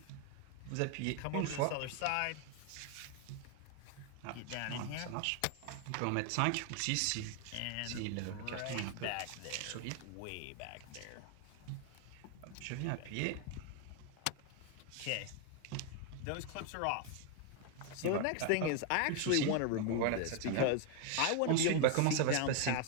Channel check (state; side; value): different; both; correlation 0.01